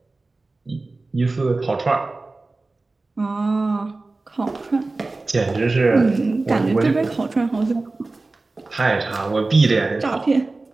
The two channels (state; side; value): quieter; left; 3.4 dB